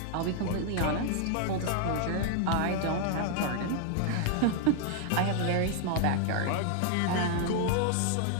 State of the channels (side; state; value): both; different; correlation 0.00